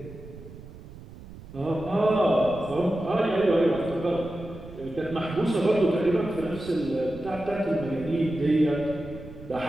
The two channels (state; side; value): noise; right; rumble, 16 dB below the sound